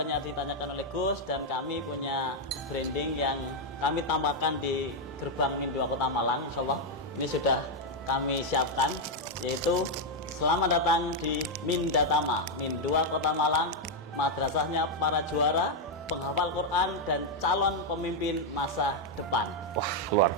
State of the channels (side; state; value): both; normal; correlation 0.00